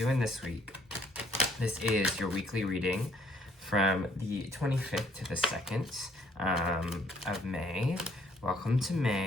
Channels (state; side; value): normal; both; correlation 0.65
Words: this week? This is your weekly reading from the 25th to the 2nd of May. Welcome to